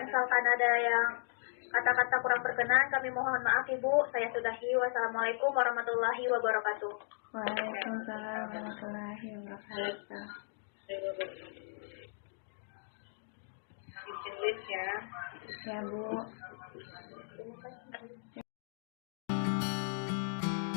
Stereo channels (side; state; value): right; silent; digital silence